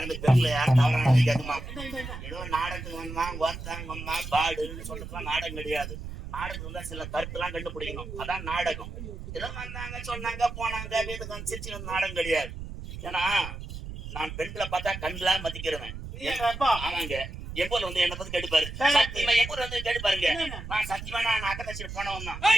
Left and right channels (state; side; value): noise; right; rumble, 9 dB below the sound